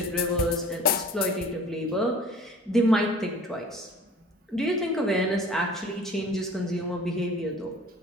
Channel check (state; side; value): normal; both; correlation 0.46